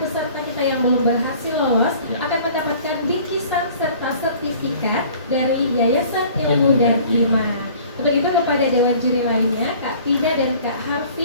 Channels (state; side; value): inverted; both; correlation -0.50